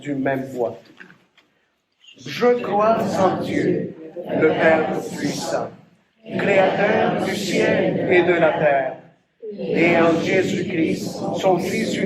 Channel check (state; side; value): identical; both; correlation 1.00